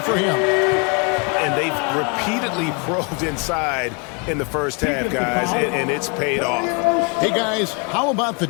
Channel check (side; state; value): right; quieter; 33.5 dB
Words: him. And they've repeatedly probed inside in the first half, guys, and it's paid off. Hey, guys, how about the